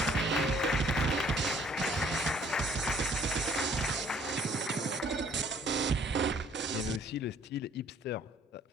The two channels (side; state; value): both; normal; correlation 0.59